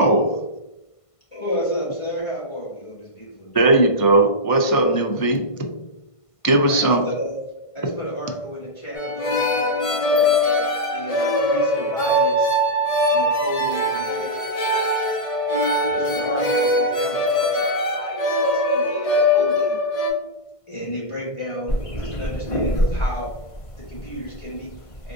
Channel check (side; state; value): right; late; 1.5 ms